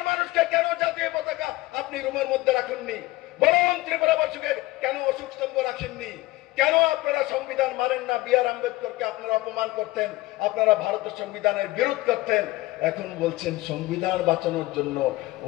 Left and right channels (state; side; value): quieter; right; 19.2 dB